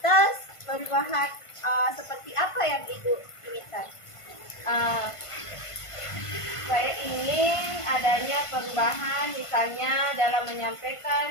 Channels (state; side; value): late; right; 1.5 ms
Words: perubahan seperti apa yang Ibu inginkan? Saya ingin adanya perubahan misalnya dalam